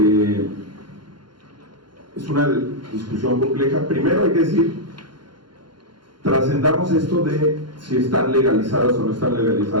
una discusión compleja. Primero hay que decir, trascendamos esto de si están legalizadas o no están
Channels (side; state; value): left; late; 0.71 ms